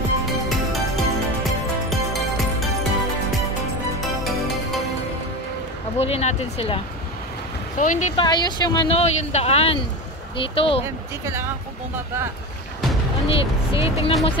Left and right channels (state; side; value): normal; both; correlation 0.25